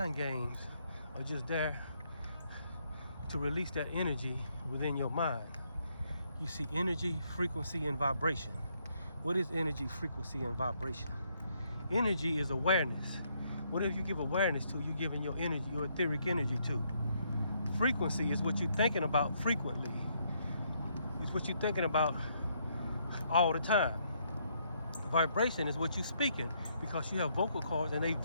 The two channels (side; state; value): both; inverted; correlation -0.73